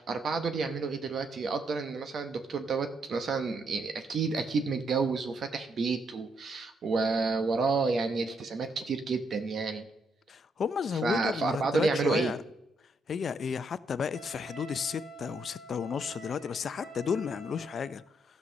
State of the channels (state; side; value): normal; both; correlation 0.75